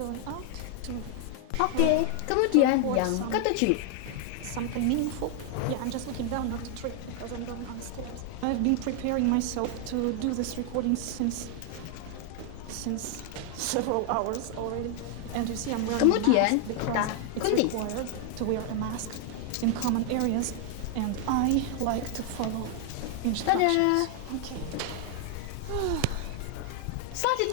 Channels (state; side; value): different; both; correlation 0.00